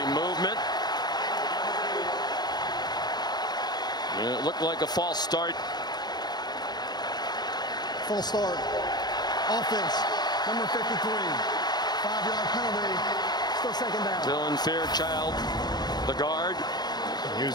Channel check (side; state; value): right; late; 0.20 ms